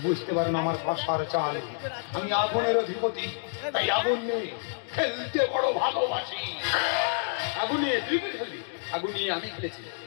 বুঝতে পারে না আমার ভাষার চাল। আমি আগুনের অধিপতি, তাই আগুন নিয়ে খেলতে বড় ভালোবাসি। আগুন নিয়ে তুই কি খেলবি? আগুন নিয়ে আমি খেলেছি,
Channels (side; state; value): right; silent; digital silence